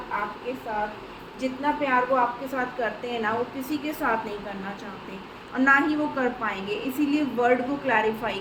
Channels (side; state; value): both; identical; correlation 1.00